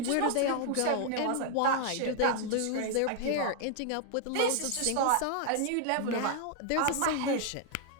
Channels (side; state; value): both; different; correlation 0.00